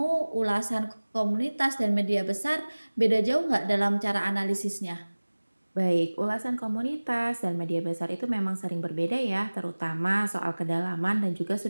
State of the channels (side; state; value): both; inverted; correlation -1.00